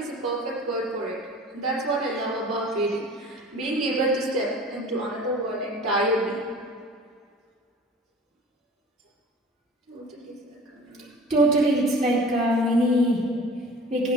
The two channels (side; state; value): both; normal; correlation 0.43